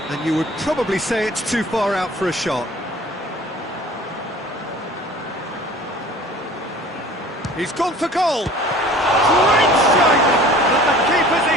And you would probably say it's too far out for a shot. He's gone for goal. Great strike, but the keeper's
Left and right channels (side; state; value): both; normal; correlation 0.46